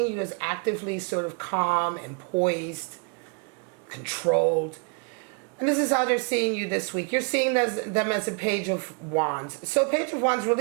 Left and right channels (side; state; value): left; quieter; 35.1 dB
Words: you as actively sort of calm and poised, controlled. And this is how they're seeing you this week. You're seeing them as a Page of Wands. So Page of Wands